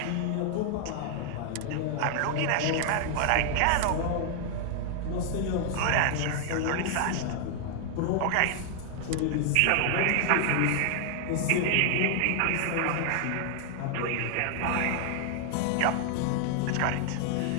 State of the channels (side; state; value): both; different; correlation 0.00